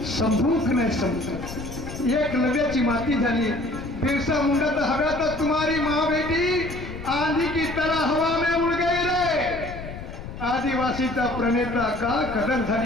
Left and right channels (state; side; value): noise; left; rumble, 10 dB below the sound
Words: संभूक नाही संभूक, एक लव्याची माती झाली. बिरसा मुंडा तर हव्यातच तुम्हारी माँ बेटी आंधी की तरह हवा में उड़ गई रे. आदिवासीचा प्रणेता का कदर